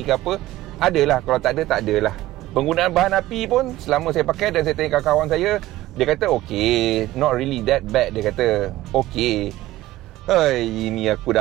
ke apa, adalah. Kalau tak ada, tak adalah. Penggunaan bahan api pun selama saya pakai dan saya tanya kawan saya, dia kata okay, not really that bad. Dia kata okay. Ini aku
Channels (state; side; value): quieter; left; 16.0 dB